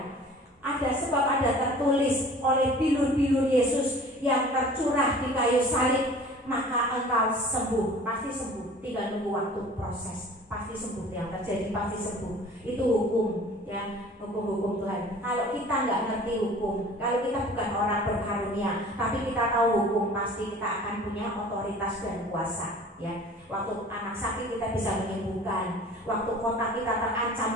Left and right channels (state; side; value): normal; both; correlation 0.46